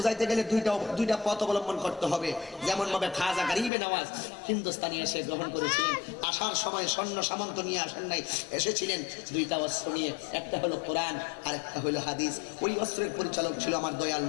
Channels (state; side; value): drops out; right; at 3.7 s